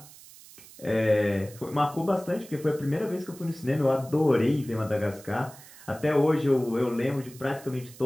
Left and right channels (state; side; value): noise; right; hiss, 20 dB below the sound